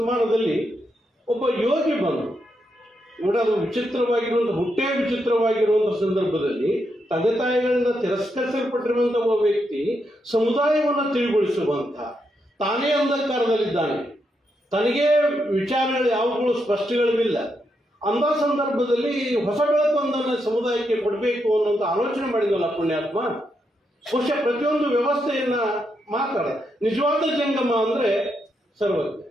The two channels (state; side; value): normal; both; correlation 0.82